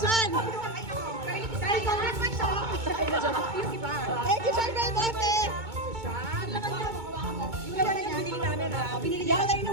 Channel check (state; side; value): late; left; 2.2 ms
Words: Dahil congressman siya. Yung iba. Thank you, Sir Belmonte! Yung naman na binili namin ha. Hindi ako